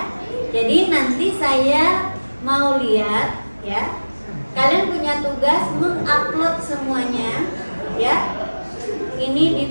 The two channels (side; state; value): both; inverted; correlation -1.00